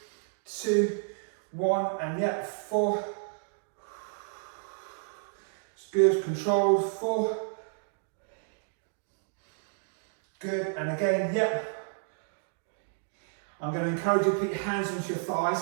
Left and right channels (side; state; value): left; silent; digital silence